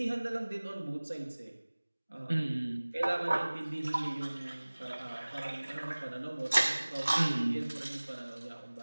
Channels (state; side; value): inverted; both; correlation -1.00